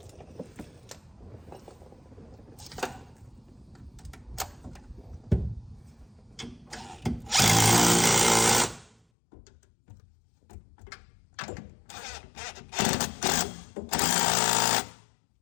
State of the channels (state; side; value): drops out; right; at 9.0 s